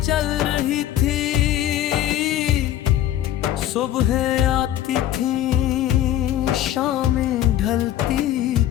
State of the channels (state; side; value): quieter; right; 12.3 dB